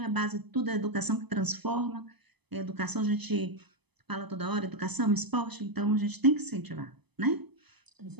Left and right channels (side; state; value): left; late; 0.99 ms